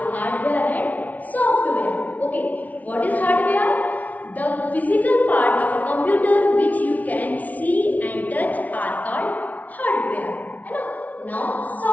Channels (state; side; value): late; right; 0.073 ms